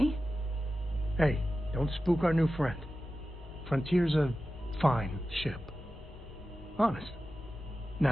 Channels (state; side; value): normal; both; correlation 0.93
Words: Hey, don't spook our new friend. Frontier's a fine ship. Honest.